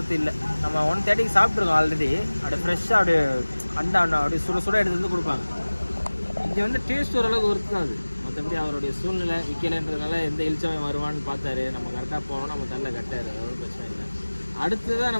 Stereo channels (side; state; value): both; inverted; correlation -1.00